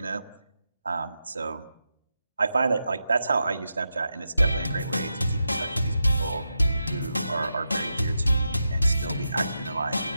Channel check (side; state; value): both; inverted; correlation -0.87